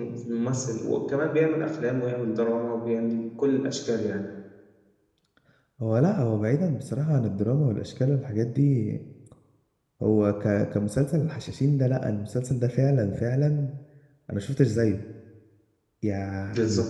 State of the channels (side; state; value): both; identical; correlation 1.00